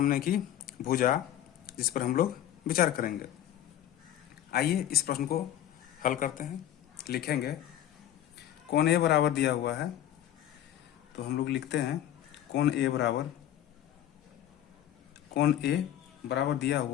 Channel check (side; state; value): right; quieter; 11.7 dB